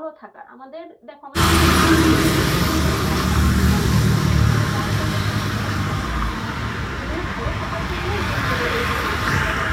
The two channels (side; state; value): both; identical; correlation 1.00